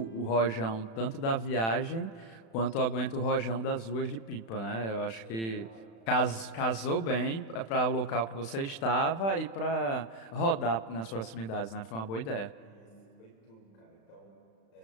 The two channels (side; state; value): right; late; 36 ms